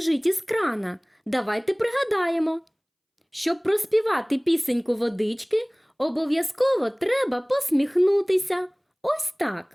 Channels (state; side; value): identical; both; correlation 1.00